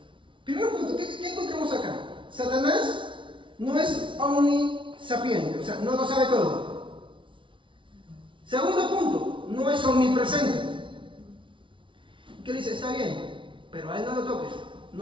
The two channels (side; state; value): left; late; 0.25 ms